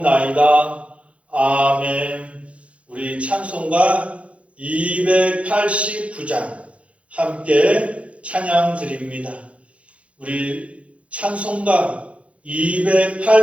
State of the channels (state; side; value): late; left; 0.063 ms